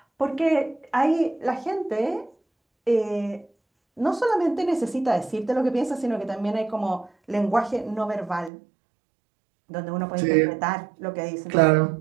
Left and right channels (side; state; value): left; drops out; at 8.5 s